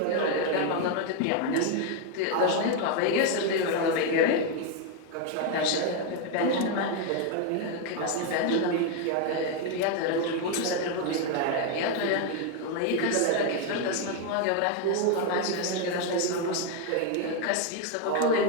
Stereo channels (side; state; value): both; different; correlation 0.01